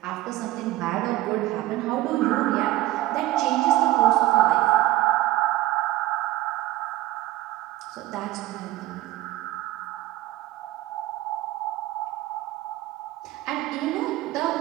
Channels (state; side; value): quieter; left; 16.3 dB